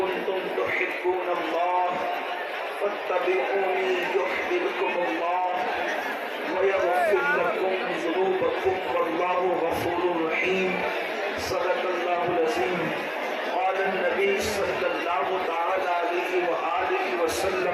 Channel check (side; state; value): both; identical; correlation 1.00